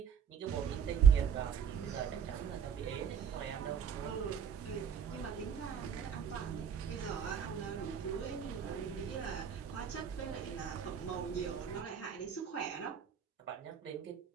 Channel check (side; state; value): left; quieter; 7.6 dB